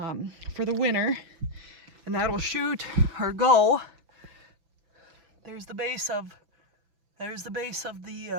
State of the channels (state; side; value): late; left; 6.0 ms